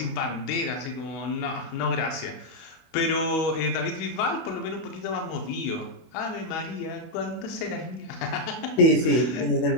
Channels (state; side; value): late; right; 24 ms